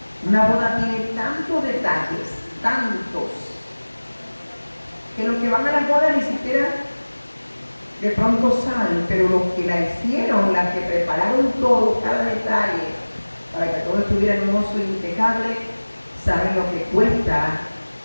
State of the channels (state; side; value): inverted; both; correlation -1.00